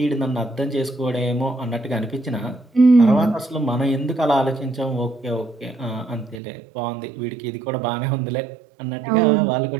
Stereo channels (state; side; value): drops out; left; at 6.4 s